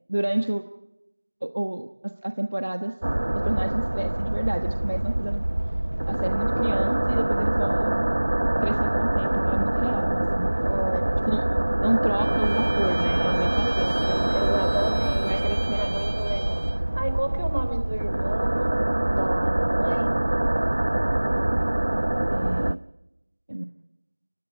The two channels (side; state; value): both; inverted; correlation -1.00